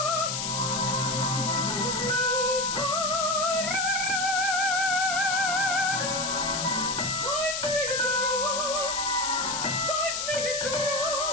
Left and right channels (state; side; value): noise; left; hiss, 2 dB below the sound